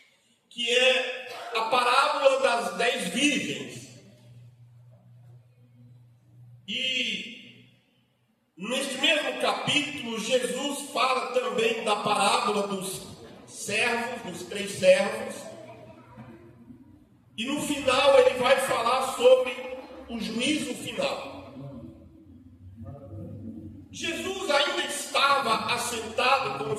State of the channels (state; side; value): identical; both; correlation 1.00